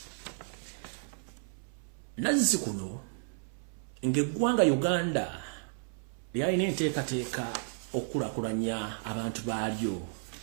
nazzi kuno ng'eggwanga Uganda lyalina enteekateeka okulakulanya abantu baalyo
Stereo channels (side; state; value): left; silent; 56 dB below the other